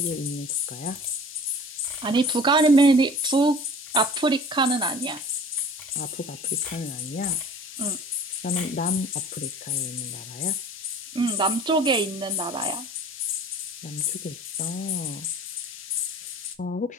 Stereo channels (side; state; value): both; normal; correlation 0.45